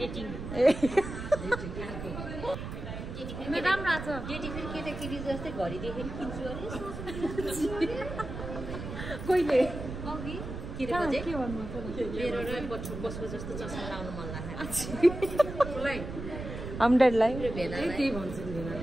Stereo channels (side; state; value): right; noise; rumble, 8 dB below the sound